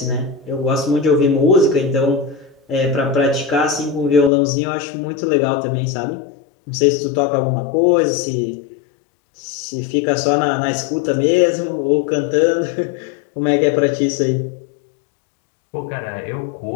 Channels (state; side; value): drops out; right; at 4.3 s